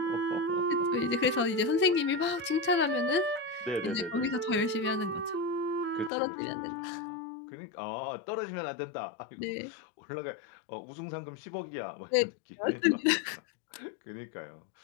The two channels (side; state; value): right; drops out; at 6.1 s